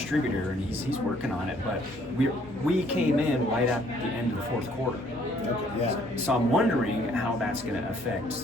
and he's working on it. But we came in right at the end of the fourth quarter. Okay. Yeah. So I'm wondering how that's going to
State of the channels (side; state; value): both; normal; correlation 0.63